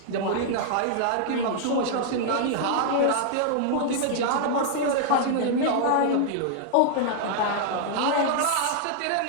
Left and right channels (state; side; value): different; both; correlation -0.01